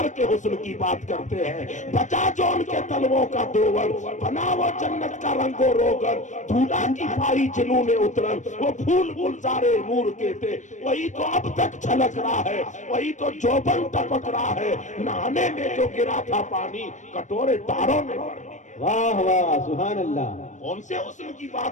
کے حسن کی بات کرتے ہیں۔ بچا جو ان کے تلووں کا دوور، بنا وہ جنت کا رنگ و روغن، دھولا کی پائی جنون اترن، وہ پھول گلزارے نور کے تھے، وہی تو اب تک چھلک رہا ہے، وہی تو جوبن ٹپک رہا ہے، نہانے میں جو گرا تھا پانی کٹورے تاروں نے بھر لی۔ واہ واہ، سبحان اللہ۔ کون سے حسن کی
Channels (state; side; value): late; right; 0.35 ms